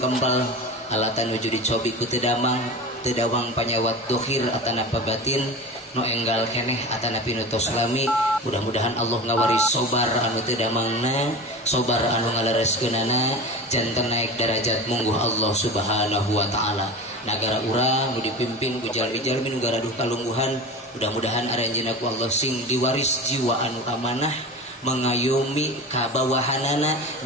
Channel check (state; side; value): normal; both; correlation 0.31